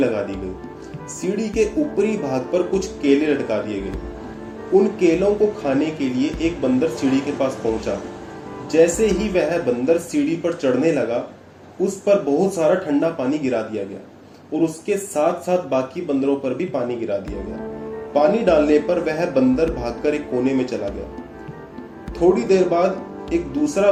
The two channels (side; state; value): both; identical; correlation 1.00